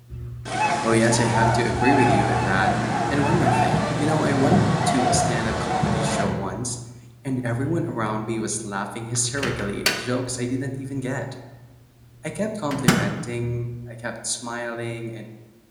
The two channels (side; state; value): both; identical; correlation 1.00